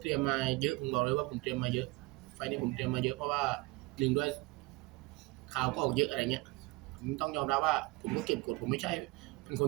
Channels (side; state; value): left; quieter; 23.2 dB